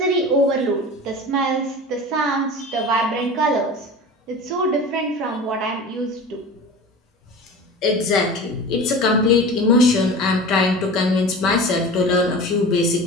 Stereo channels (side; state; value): both; normal; correlation 0.34